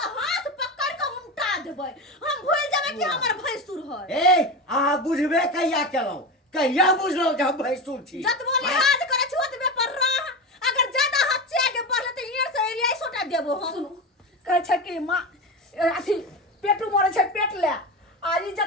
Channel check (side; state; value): both; normal; correlation 0.21